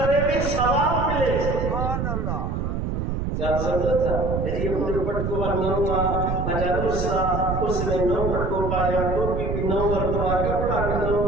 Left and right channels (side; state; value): right; noise; rumble, 2 dB below the sound